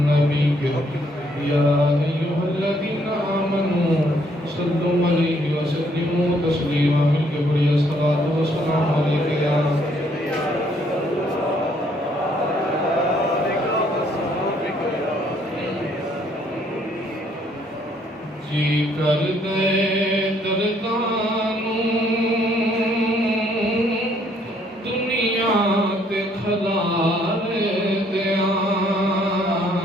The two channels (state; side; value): normal; both; correlation 0.66